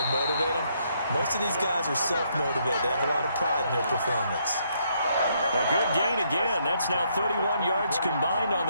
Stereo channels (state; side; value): inverted; both; correlation -0.73